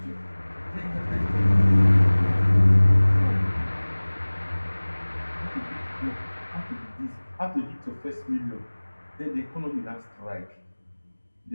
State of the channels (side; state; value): both; inverted; correlation -1.00